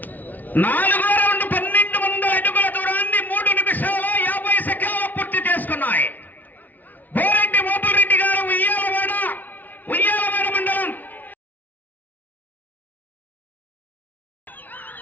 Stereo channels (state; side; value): late; right; 0.080 ms